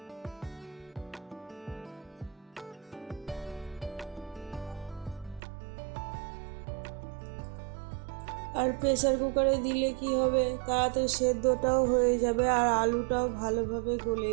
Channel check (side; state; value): left; drops out; at 5.4 s